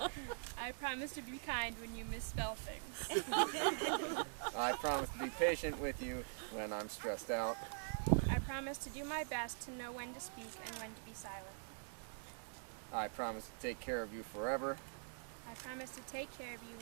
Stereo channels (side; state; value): left; silent; digital silence